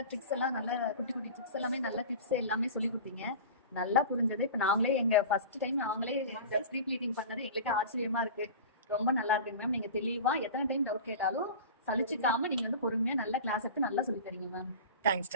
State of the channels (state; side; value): inverted; both; correlation -0.34